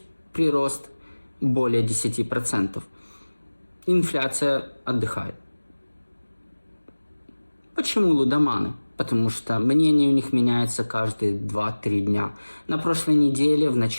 прирост более 10%. инфляция отдыхает. Почему лудоманы? Потому что мнение у них меняется каждые 2-3 дня. На прошлой неделе, в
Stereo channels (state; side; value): inverted; both; correlation -1.00